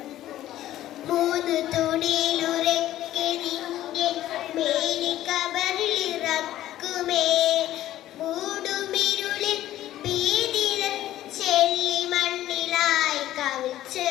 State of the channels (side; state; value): right; quieter; 13.6 dB